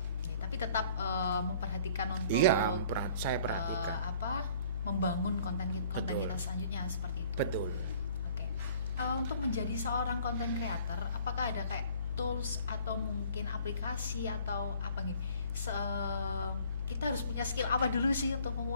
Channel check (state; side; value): inverted; both; correlation -0.54